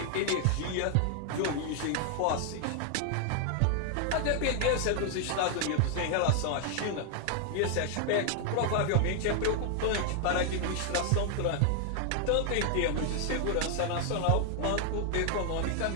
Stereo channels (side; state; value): both; different; correlation 0.00